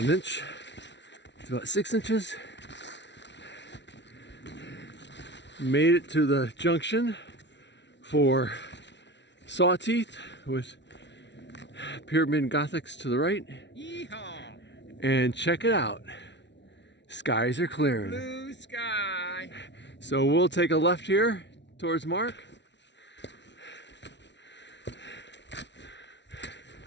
1 inch to about 6 inches. Made it to the junction for Sawteeth with Pyramid Gothics to the right. Yeehaw! And check it out. Skies are clearing. Blue sky. So we'll take a left here towards Mark.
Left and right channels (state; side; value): late; right; 0.51 ms